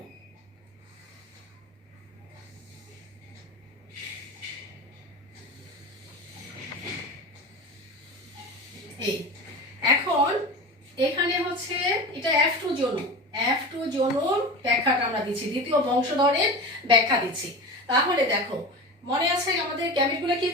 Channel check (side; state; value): both; normal; correlation 0.29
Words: এই এখন এখানে হচ্ছে এটা F2 জোন, F2 জোন ব্যাখ্যাটা আমরা দিচ্ছি, দ্বিতীয় বংশধরের ব্যাখ্যা দিচ্ছি। তাহলে দেখো, মনে আছে আমাদের গ্যামেটগুলো কি